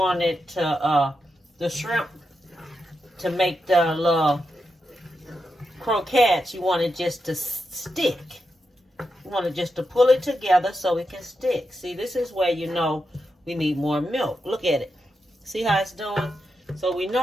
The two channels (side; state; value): both; normal; correlation 0.86